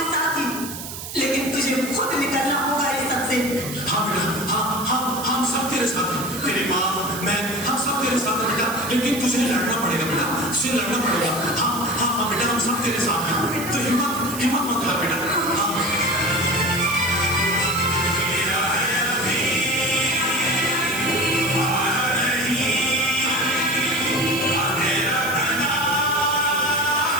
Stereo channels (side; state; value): right; noise; hiss, 9 dB below the sound